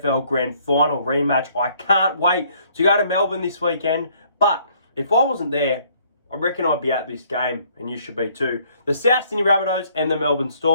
Grand Final rematch, I can't wait to go to Melbourne this weekend. But if I wasn't there, I reckon I'd be at this game, and you should be too. The South Sydney Rabbitohs and the Melbourne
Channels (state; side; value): inverted; both; correlation -0.63